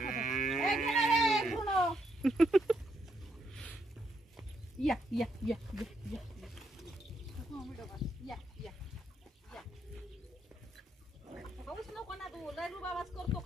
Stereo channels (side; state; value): both; normal; correlation 0.77